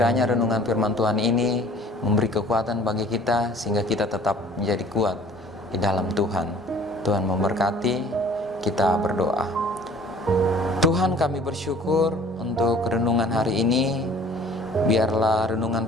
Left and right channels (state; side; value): normal; both; correlation 0.50